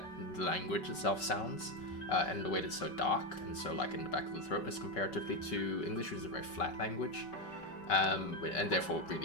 the language itself sounds, and the way that it's so dark and so like in the back of the throat as comparatively to English, which is a very flat language, and therefore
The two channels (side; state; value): right; late; 5.3 ms